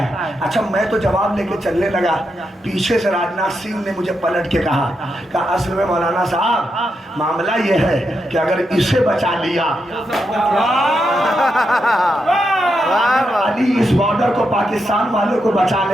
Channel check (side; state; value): both; normal; correlation 0.84